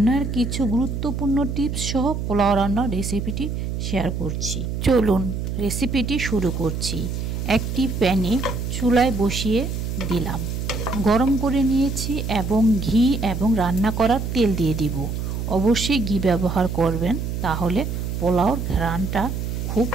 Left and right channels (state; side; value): noise; right; hum, 3 dB below the sound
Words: কিছু গুরুত্বপূর্ণ টিপস সহ পোলাও রান্নার রেসিপিটি শেয়ার করছি। চলুন রেসিপিটি শুরু করছি। একটি প্যানে চুলায় বসিয়ে দিলাম, গরম করে নিয়েছি এবং ঘি এবং রান্না করার তেল দিয়ে দিব। অবশ্যই ঘি ব্যবহার করবেন, তাহলে পোলাওর ঘ্রাণটা খুব